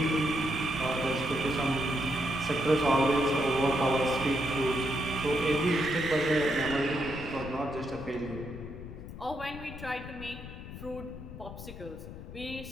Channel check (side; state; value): left; noise; rumble, 12 dB below the sound